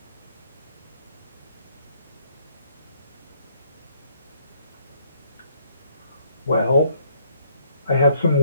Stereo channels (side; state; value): both; inverted; correlation -0.67